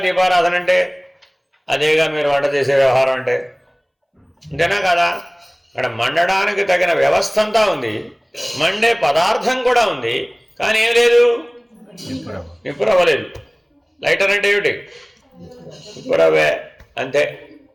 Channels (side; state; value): both; identical; correlation 1.00